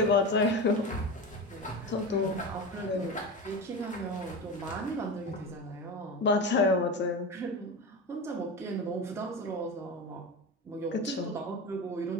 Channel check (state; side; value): normal; both; correlation 0.24